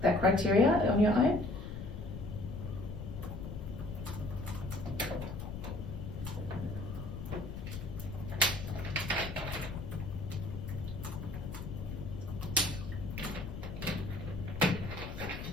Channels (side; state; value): left; noise; rumble, 7 dB below the sound